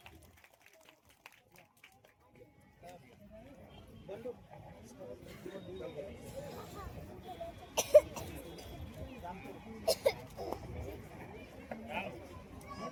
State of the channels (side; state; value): both; identical; correlation 1.00